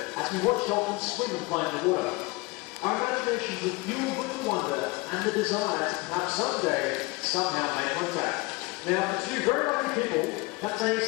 as we watched dolphins swim and play in the water. Our imaginations were fueled with the wonder and the desire to perhaps someday, somehow make contact. Now, for two very lucky people, that day is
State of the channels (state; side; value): quieter; right; 23.9 dB